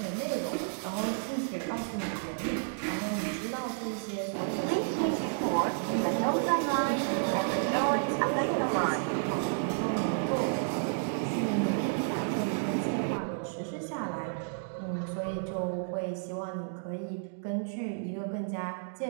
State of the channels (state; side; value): silent; left; digital silence